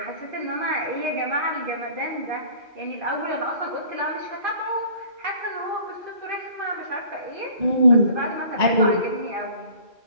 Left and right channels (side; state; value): left; late; 1.9 ms